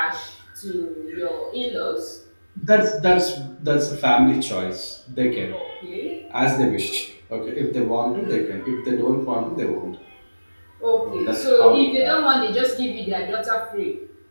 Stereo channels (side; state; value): both; inverted; correlation -1.00